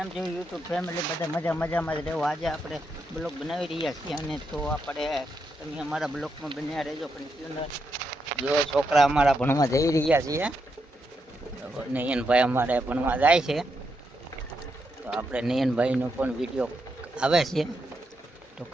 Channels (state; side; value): normal; both; correlation 0.82